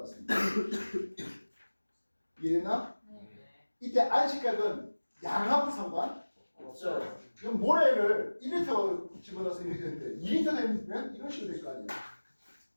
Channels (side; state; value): both; inverted; correlation -1.00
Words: 같습니다. 이해됐나? 네. 이때 안식각은 양하고 상관 없어요. 이건 모래를 1리터 집어넣어서 이렇게 되는데 2리터 되면 이런 식으로 될 거 아니에요.